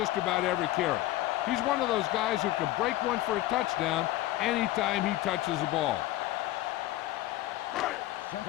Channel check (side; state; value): right; quieter; 15.9 dB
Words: about every carry. He's one of those guys who can break one for a touchdown anytime he touches the ball.